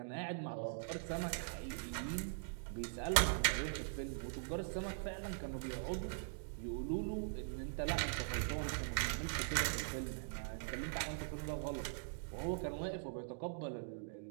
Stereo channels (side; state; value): left; silent; digital silence